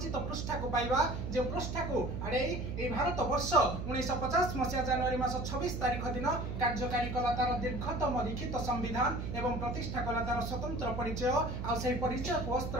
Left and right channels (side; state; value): right; noise; hum, 4 dB below the sound